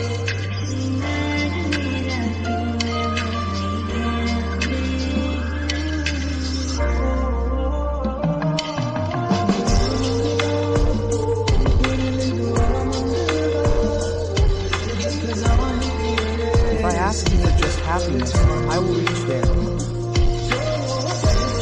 If I ask you for just happiness, I will reach there.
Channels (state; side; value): identical; both; correlation 1.00